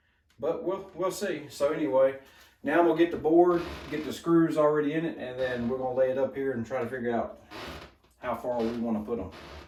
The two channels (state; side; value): identical; both; correlation 1.00